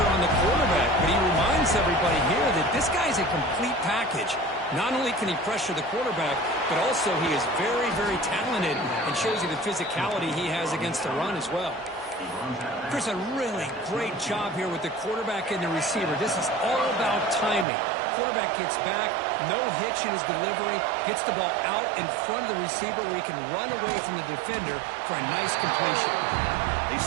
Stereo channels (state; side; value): drops out; left; at 17.7 s